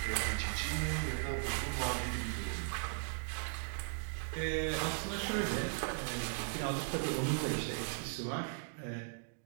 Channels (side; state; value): left; silent; digital silence